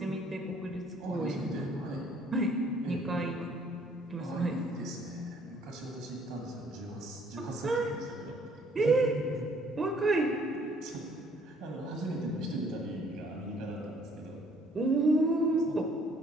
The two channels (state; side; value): normal; both; correlation 0.61